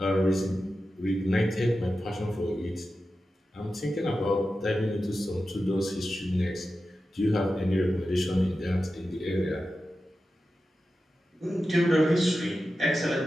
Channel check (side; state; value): both; normal; correlation 0.92